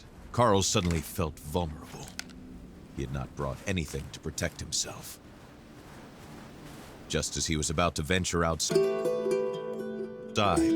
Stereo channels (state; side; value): identical; both; correlation 1.00